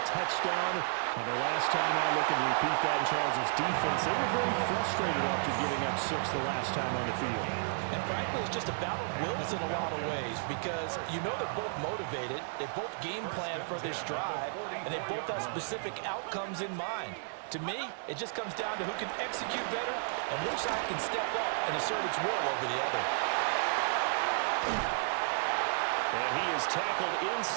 touchdown on their last time out. Looking to repeat that in Charles' defense. They were very frustrated after giving up 6 the last time on the field. And frankly, it's just a battle of wills in a lot of ways because you know they're both motivated, they both game plan for this drive, and they both have specific outcomes in mind. To me, it just comes down to who can execute better and which side can step up and assert its will over the other. And he is tackled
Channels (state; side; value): silent; left; 56 dB below the other